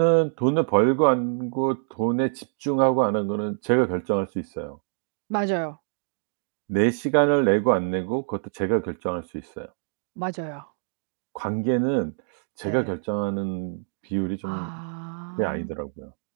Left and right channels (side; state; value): left; silent; digital silence